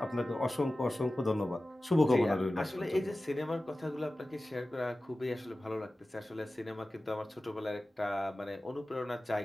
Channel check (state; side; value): normal; both; correlation 0.96